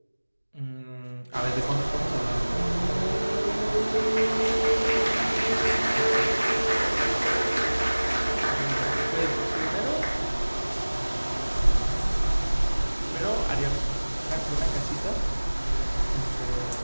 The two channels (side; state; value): both; inverted; correlation -1.00